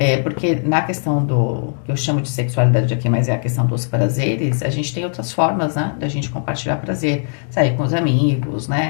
Porque na questão que eu chamo de sexualidade aqui, mas é a questão dos prazeres, a gente tem outras formas, né, da gente compartilhar prazer, sair com os amigos,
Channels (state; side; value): silent; right; 66 dB below the other